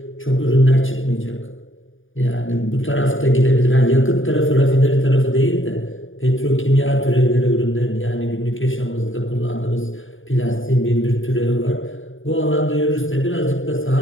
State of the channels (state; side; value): late; right; 0.58 ms